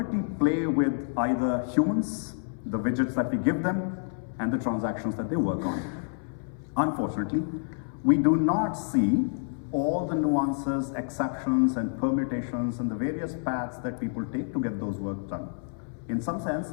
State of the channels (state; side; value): silent; right; 59 dB below the other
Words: play with either humans, the widgets that we give them, and the transactions that they work on. Unfortunately, we do not see all the nuances, exceptions, and permutations and the various paths that people take to get those work done. In some sense,